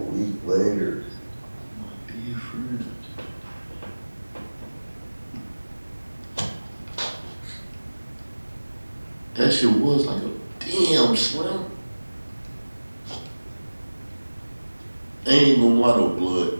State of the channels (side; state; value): both; inverted; correlation -1.00